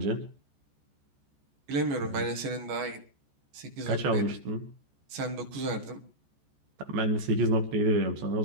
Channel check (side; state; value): left; late; 14 ms